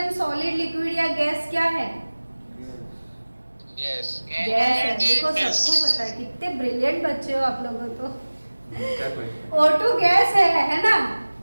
सॉलिड, लिक्विड या गैस क्या है? यस गैस है। देखो सबको पता है, कितने ब्रिलियंट बच्चे हो आप लोगों तो। उनका question। O2 गैस है ना?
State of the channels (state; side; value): inverted; both; correlation -1.00